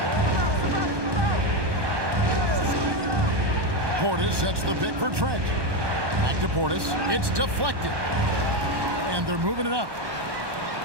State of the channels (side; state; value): left; late; 1.2 ms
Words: Portis sets the pick for Trent. Back to Portis. It's deflected. And they're moving it up.